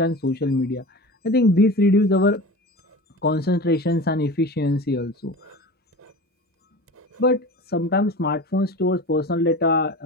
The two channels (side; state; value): both; normal; correlation 0.33